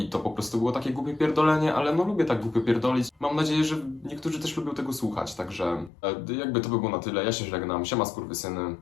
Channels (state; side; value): drops out; right; at 5.9 s